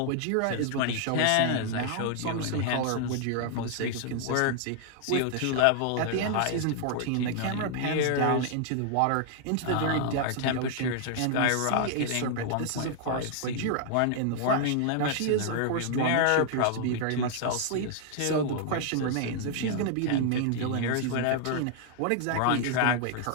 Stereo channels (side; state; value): both; different; correlation 0.00